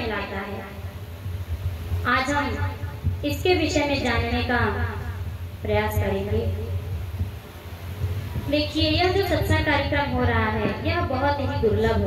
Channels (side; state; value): both; identical; correlation 1.00